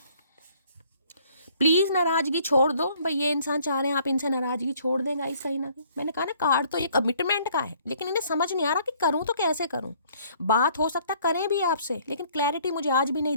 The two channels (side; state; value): both; inverted; correlation -0.60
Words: प्लीज नाराजगी छोड़ दो भाई, ये इंसान चाह रहे हैं आप इनसे नाराजगी छोड़ दें गाइस कहीं ना कहीं। मैंने कहा ना कार्ड तो ये कमिटमेंट का है, लेकिन इन्हें समझ नहीं आ रहा कि करूं तो कैसे करूं। बात हो सकता करें भी आपसे, लेकिन क्लैरिटी मुझे आज भी नहीं